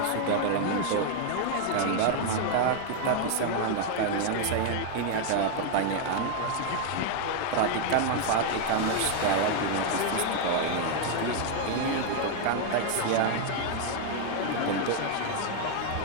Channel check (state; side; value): different; both; correlation 0.00